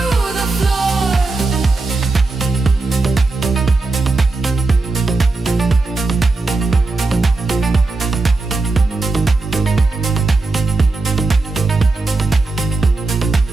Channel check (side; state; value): left; quieter; 3.4 dB